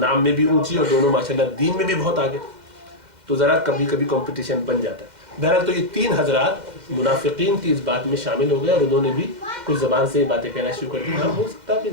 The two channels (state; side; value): late; left; 2.1 ms